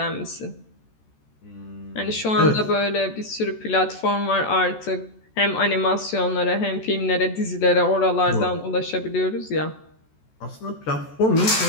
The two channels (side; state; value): right; late; 14 ms